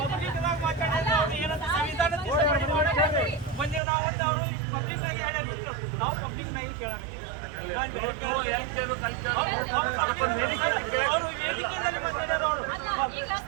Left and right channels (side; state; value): left; drops out; at 3.8 s